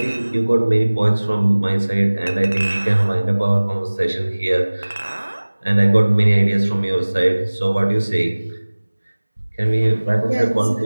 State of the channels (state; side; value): inverted; both; correlation -1.00